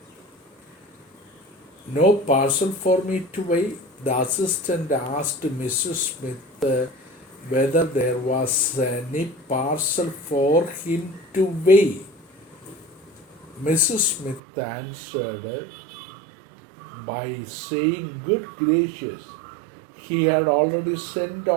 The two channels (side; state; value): left; drops out; at 14.4 s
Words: No parcel for me to weigh. The assistant asked Mrs. Smith whether there was any parcel for him to weigh. Mrs. Smith answered by saying, "Good gracious, He had already sent